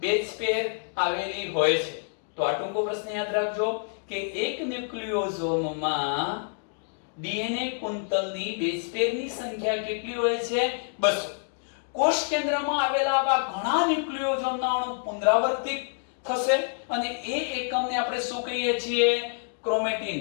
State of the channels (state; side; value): silent; right; digital silence